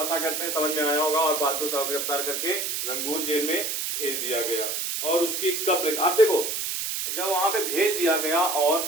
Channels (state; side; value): noise; right; hiss, 2 dB below the sound